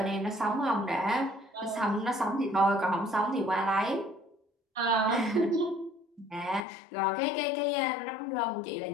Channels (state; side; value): drops out; right; at 6.7 s